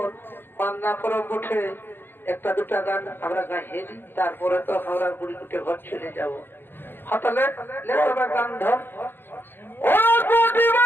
बान्ना परब उठे एक दुटा गान আমরা গাইয়ে দিই তারপরে তো আমরা বুড়ি কুটে ঘর চলে যাব হতলে লে তবে গান ধর ও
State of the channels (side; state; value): right; late; 0.10 ms